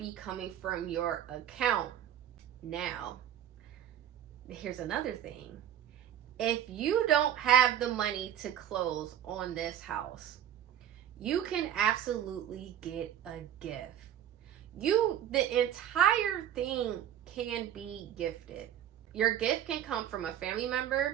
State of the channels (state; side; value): quieter; left; 10.6 dB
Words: coming from your account. Now, here's another thing. If you don't have the money to close on this house, you can absolutely get a gift. The entire thing can be gifted. Your gift can come from a family